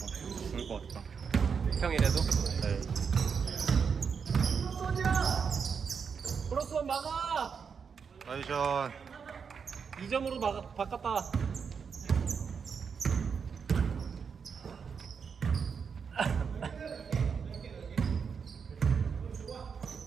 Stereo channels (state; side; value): quieter; left; 6.2 dB